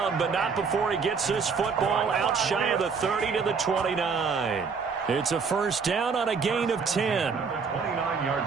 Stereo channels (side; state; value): left; quieter; 5.4 dB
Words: but not before he gets this football out shy of the 30 to the 29. It's a 1st down on a gain of 10.